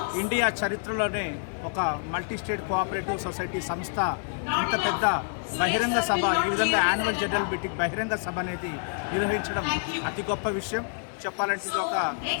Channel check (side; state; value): right; silent; digital silence